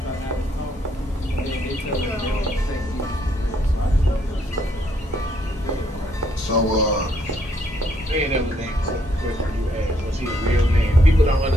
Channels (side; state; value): both; normal; correlation 0.71